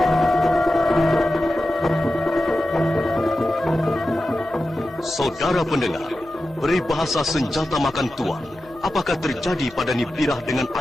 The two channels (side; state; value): both; normal; correlation 0.92